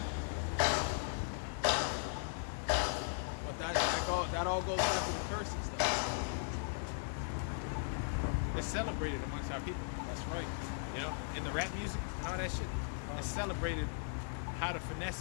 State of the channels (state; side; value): silent; right; digital silence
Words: But that all goes back to the curses though. It's celebrated amongst our people. That's right. You know, in the rap music and all that shit. It's celebrated how to